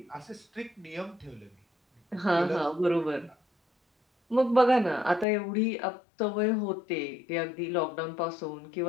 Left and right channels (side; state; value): right; drops out; at 5.2 s